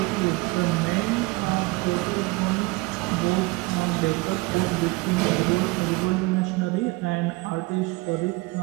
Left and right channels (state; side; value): quieter; left; 23.4 dB